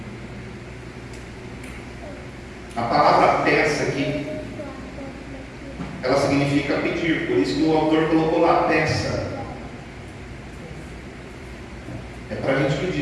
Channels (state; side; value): identical; both; correlation 1.00